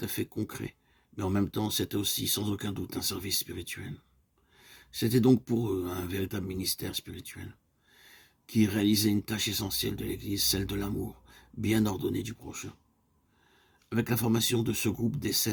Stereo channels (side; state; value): both; identical; correlation 1.00